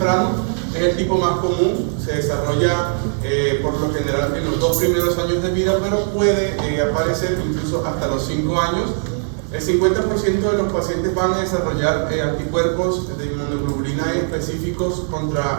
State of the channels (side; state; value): left; silent; digital silence